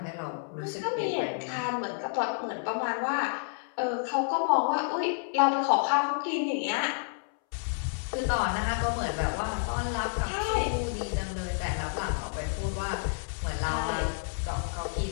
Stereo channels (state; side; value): silent; right; 58 dB below the other